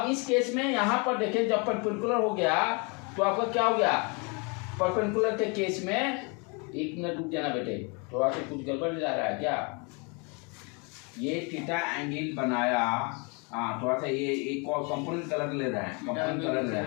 इस केस में यहाँ पर देखें, जब परपेंडिकुलर हो गया तो आपका क्या हो गया, परपेंडिकुलर के केस में, एक मिनट रुक जाना बेटे, थोड़ा सा कुछ गड़बड़ जा रहा है क्या, ये थीटा एंगल बनाया, हाँ थोड़ा सा ये एक कंपोनेंट कलर ले रहा है, कंपोनेंट कलर ले रहा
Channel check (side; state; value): right; quieter; 32.3 dB